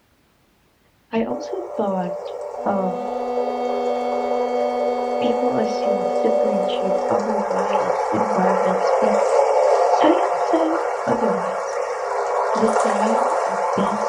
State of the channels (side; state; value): both; identical; correlation 1.00